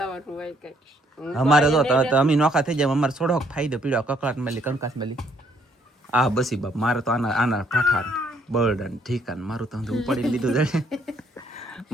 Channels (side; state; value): both; normal; correlation 0.68